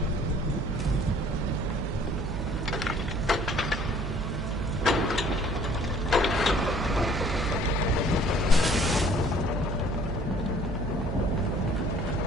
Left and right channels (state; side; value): noise; right; hum, 4 dB below the sound